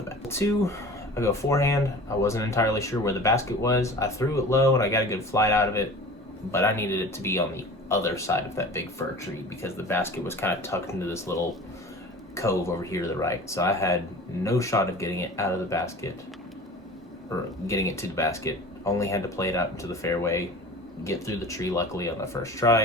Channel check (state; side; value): normal; both; correlation 0.39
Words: bat. 2, I go forehand. I wasn't entirely sure where the basket was. I threw it low and I got a good flight out of it, but I needed it to be on the other side of that big fir tree because the basket was kind of tucked into this little cove over here to the right. So I had no shot of getting it out of the basket, or getting it to the basket. Only had to play it out into the fairway, get through the tree luckily on the first